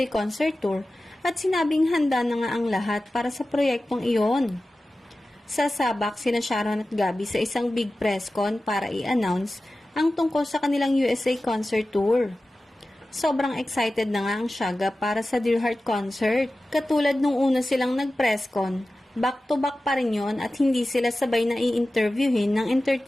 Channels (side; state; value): both; normal; correlation 0.95